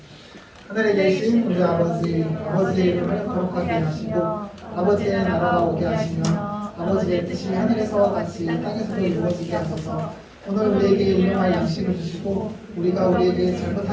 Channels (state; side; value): identical; both; correlation 1.00